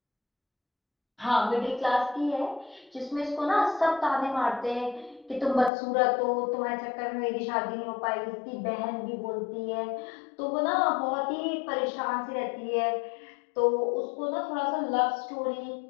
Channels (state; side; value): drops out; right; at 5.7 s